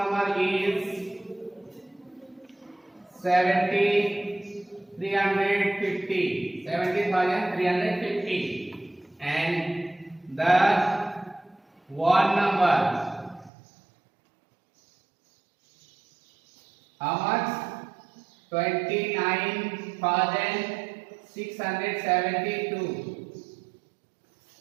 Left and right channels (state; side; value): drops out; left; at 13.5 s